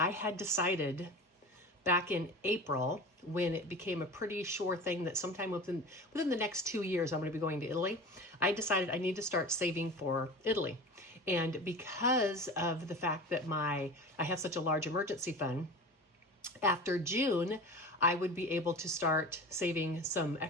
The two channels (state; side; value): normal; both; correlation 0.33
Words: had decided back in April, when it became a pretty sure thing that sometime within the next 2 years I'm going to be going to Italy, I decided I need to start saving for Italy. And because of the fact that I have such a large emergency fund, after June, I would be able to start saving some